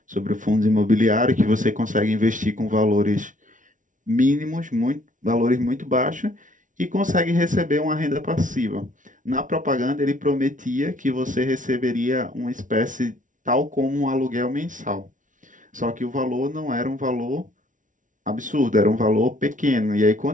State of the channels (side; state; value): left; late; 0.37 ms